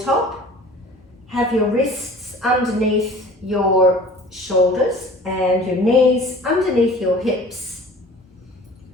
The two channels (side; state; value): both; normal; correlation 0.45